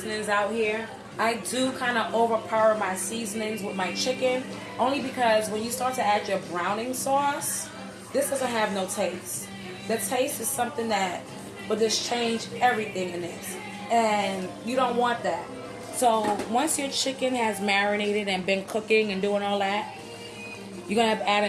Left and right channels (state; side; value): identical; both; correlation 1.00